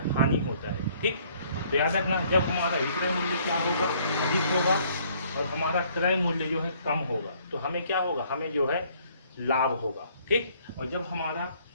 हानि होता है। ठीक, तो याद रखना, जब हमारा विक्रय मूल्य क्या होगा? अधिक होगा और हमारा क्रय मूल्य जो है कम होगा तो हमें क्या होगा? हमें जो है लाभ होगा। ठीक, और जब हमारा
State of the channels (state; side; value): inverted; both; correlation -0.62